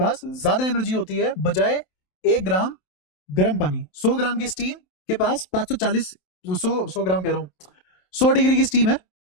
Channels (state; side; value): late; right; 27 ms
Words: ज्यादा एनर्जी होती है बजाय 1 ग्राम गर्म पानी। 100 ग्राम की स्टीम के पास 540, 100 ग्राम कह रहा हूँ, 100 डिग्री की स्टीम है,